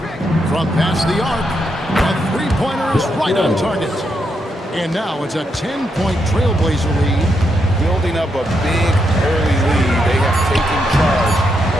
From past the arc. A three Three-pointer is right on target. And now it's a 10-point Trailblazer lead. Building up a big early lead. They have taken charge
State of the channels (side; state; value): both; normal; correlation 0.81